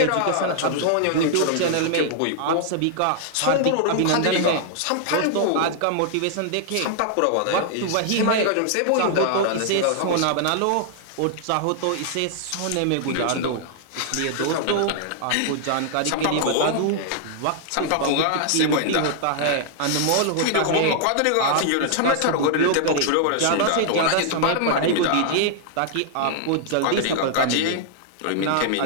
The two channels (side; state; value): both; different; correlation -0.01